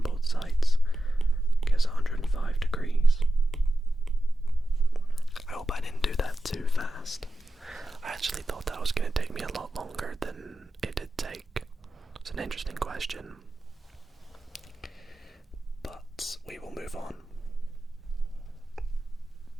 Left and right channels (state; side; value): normal; both; correlation 0.92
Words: both sides, gives 105 degrees. I hope I didn't do that too fast. I actually thought that was going to take me a lot longer than it did take. It's an interesting question, but we will move on